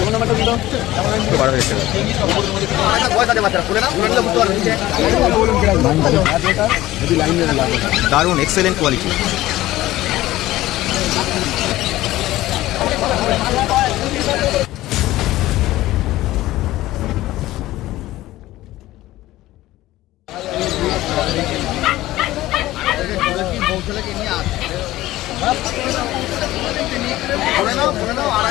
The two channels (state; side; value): quieter; right; 16.3 dB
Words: দারুণ এক্সেলেন্ট কোয়ালিটি।